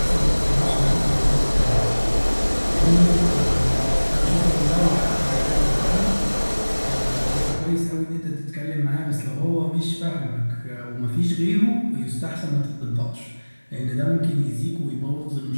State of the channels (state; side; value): inverted; both; correlation -1.00